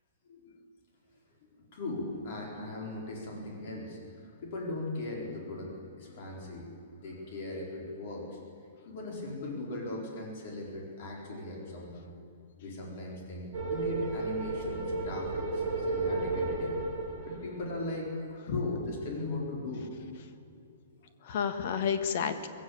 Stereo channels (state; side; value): inverted; both; correlation -0.46